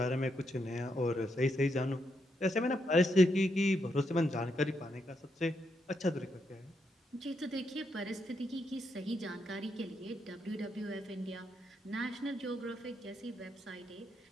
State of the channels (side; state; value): both; normal; correlation 0.80